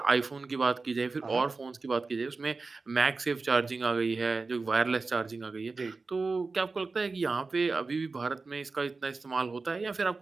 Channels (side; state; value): left; quieter; 4.0 dB